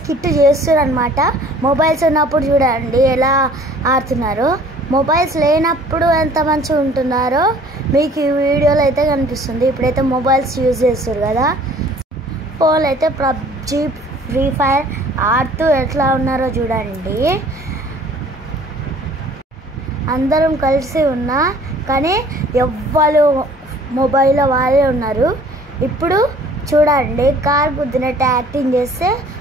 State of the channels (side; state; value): both; normal; correlation 0.52